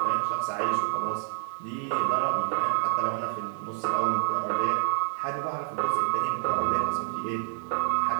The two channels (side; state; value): left; silent; 55 dB below the other